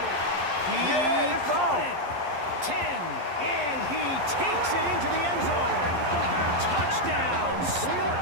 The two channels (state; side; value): late; left; 11 ms